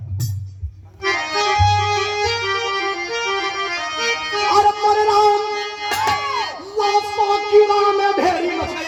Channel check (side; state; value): both; identical; correlation 1.00